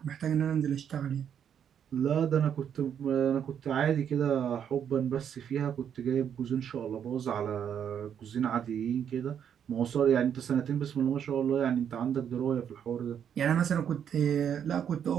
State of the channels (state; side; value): quieter; left; 8.6 dB